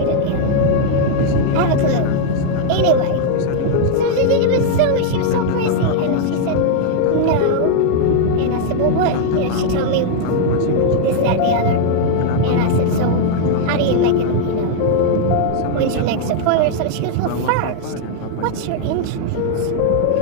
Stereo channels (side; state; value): both; different; correlation 0.00